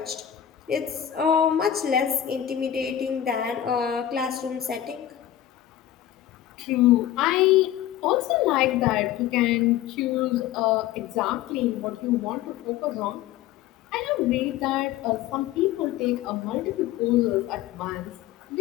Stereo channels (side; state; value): right; quieter; 11.6 dB